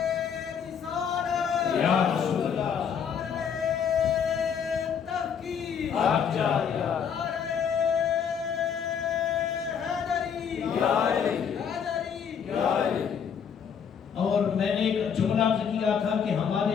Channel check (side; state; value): right; quieter; 7.4 dB